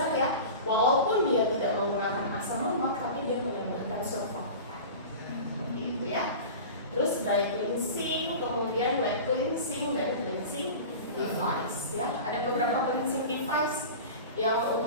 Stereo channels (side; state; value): both; inverted; correlation -0.34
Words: ya, walaupun dia tidak menggunakan asam lemak, tapi dia menambahkan surfaktan, gitu ya. Terus dry cleansing, kemudian wet cleansing dan cleansing device ya. Ada beberapa cleansing device yang